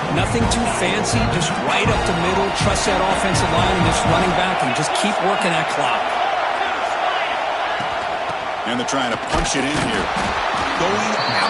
Nothing too fancy, just right up the middle. Trust that offensive line and this running back and just keep working that clock. And they're trying to punch it in here. Going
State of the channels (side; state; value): both; identical; correlation 1.00